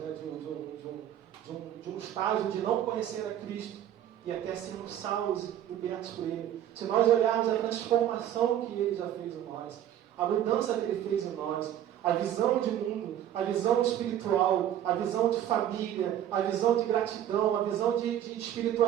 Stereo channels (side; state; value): left; quieter; 11.1 dB